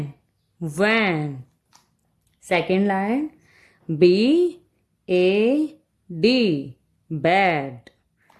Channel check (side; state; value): both; identical; correlation 1.00